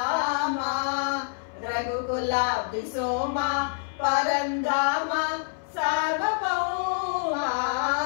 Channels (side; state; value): right; silent; 60 dB below the other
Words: రఘుకులాబ్ధి సోమ పరంధామ సార్వభౌమ